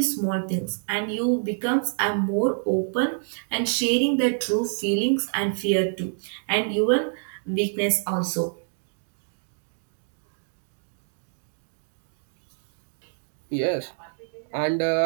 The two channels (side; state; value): left; silent; digital silence